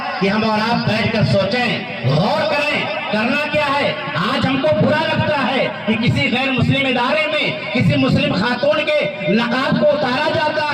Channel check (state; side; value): identical; both; correlation 1.00